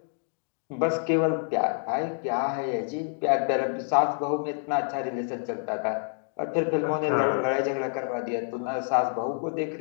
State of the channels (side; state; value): right; silent; 60 dB below the other